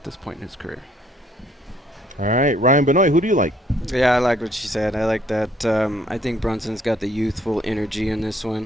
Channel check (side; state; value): both; normal; correlation 0.64